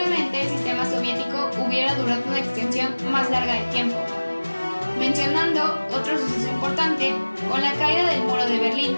el sistema soviético hubiera durado una extensión más larga de tiempo. Mencionando otro suceso importante, con la caída del muro de Berlín,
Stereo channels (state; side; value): inverted; both; correlation -1.00